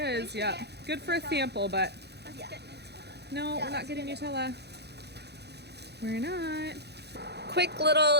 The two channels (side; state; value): left; late; 0.48 ms